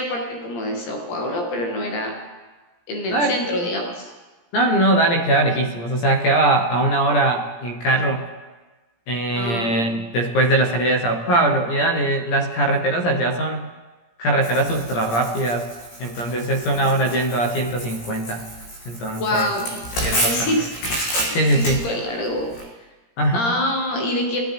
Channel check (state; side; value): late; right; 17 ms